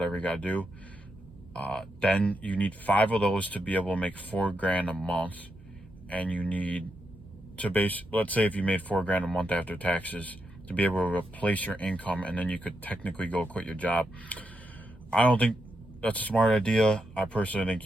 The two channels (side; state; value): both; normal; correlation 0.84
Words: you gotta do, then you need 5 of those to be able to make $4,000 a month. And you need to let's say if you made $4,000 a month after taxes, to be able to replace your income, and then you could technically go quit your job. I don't think that's a smart idea. I personally think